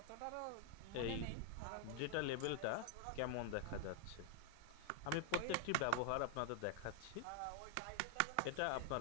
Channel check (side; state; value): both; different; correlation 0.00